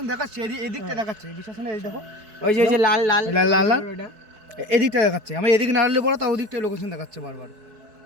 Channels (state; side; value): late; left; 4.6 ms